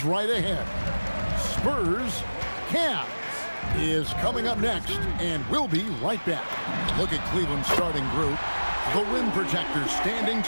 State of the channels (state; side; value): inverted; both; correlation -1.00